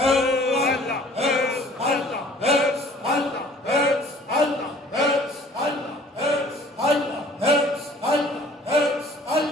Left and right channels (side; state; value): both; normal; correlation 0.52